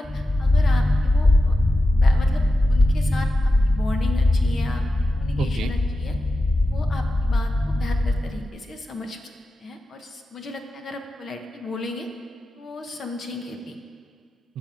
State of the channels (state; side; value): normal; both; correlation 0.92